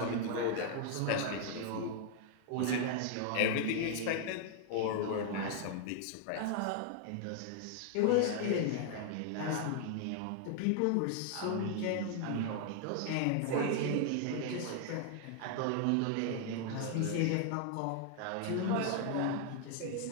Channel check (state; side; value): different; both; correlation 0.00